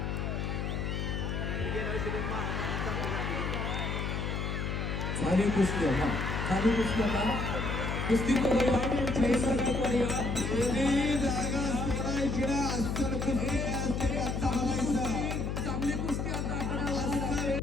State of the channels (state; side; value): noise; left; hum, 2 dB below the sound